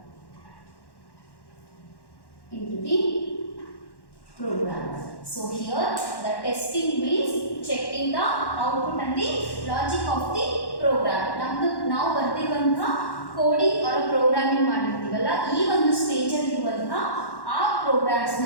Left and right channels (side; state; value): right; late; 1.1 ms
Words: So here the testing means checking the output and the logic of the program. ನಾವು ಬರ್ತಿರುವಂತಹ coding or programming ಮಾಡಿರ್ತೀವಲ್ಲ, ಈ ಒಂದು stage ಅಲ್ಲಿ ಇರುವಂತಹ ಆ programmes ನ